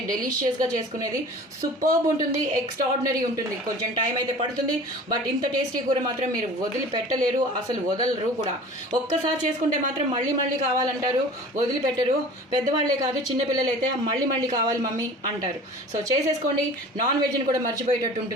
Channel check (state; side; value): normal; both; correlation 0.42